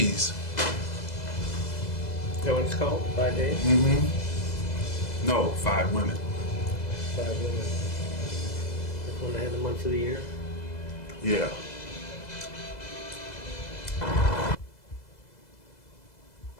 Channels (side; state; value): right; late; 2.0 ms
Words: Is that what it's called? 5 days? No, 5 women. 5 women. That's when they had the months of the year. Yeah.